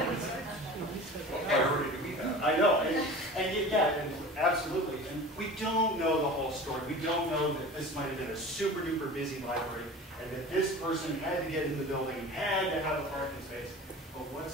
What priority do we have? I know, and absolutely. And we don't know the whole story. We don't know that this might have been a super duper busy library and that this person had to get in the building and had to have a parking space. But what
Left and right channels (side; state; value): both; normal; correlation 0.37